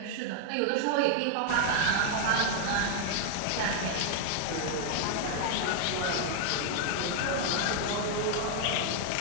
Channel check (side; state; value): both; different; correlation 0.00